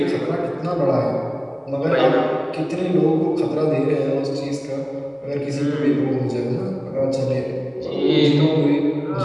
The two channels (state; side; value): identical; both; correlation 1.00